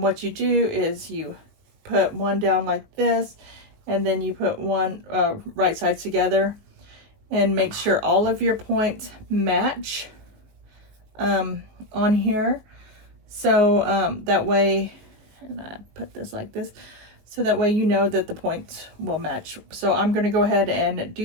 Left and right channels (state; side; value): late; left; 19 ms